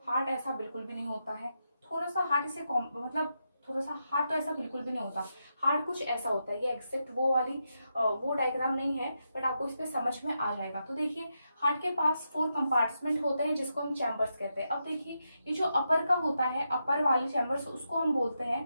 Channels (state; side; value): inverted; both; correlation -0.85